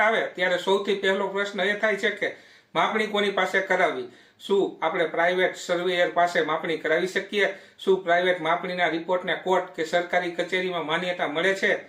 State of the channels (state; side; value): identical; both; correlation 1.00